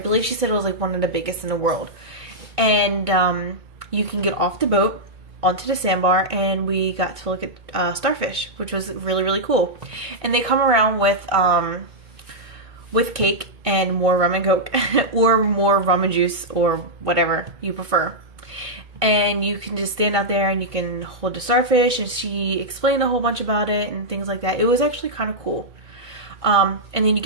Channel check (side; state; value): left; late; 2.2 ms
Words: she said it was like one of the biggest in the world. And you can get off the boat onto the sandbar, and we got to look at starfish, which was really, really cool. And they come around with cake and more rum and Coke or more rum and juice or whatever you prefer. And you can just stand out there and you can hold the starfish, and she explained a whole bunch about it and things like that. It was actually kind of cool. And then you